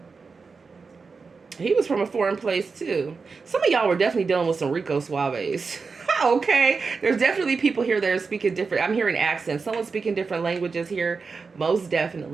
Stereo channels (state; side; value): quieter; left; 4.8 dB